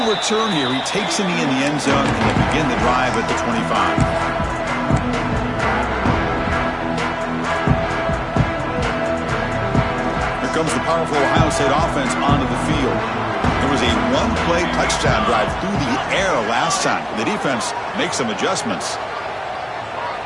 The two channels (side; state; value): both; identical; correlation 1.00